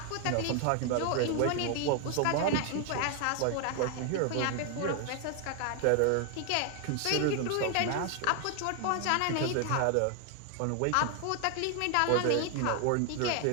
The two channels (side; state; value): both; different; correlation 0.00